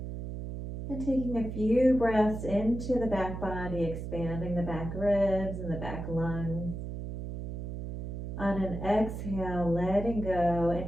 And taking a few breaths into the back body, expanding the back ribs and the back lungs. On an exhale, letting go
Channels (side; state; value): right; noise; hum, 6 dB below the sound